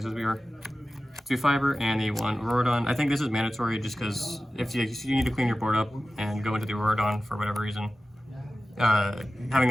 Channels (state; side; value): normal; both; correlation 0.95